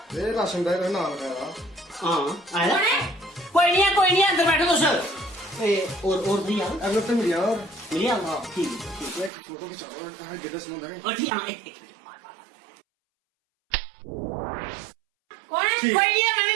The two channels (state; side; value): drops out; left; at 9.3 s